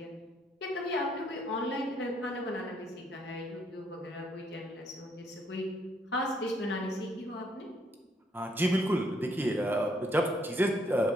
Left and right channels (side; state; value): both; normal; correlation 0.70